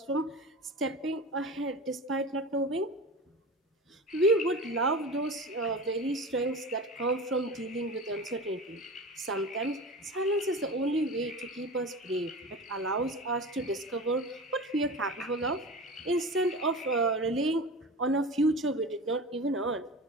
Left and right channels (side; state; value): both; normal; correlation 0.31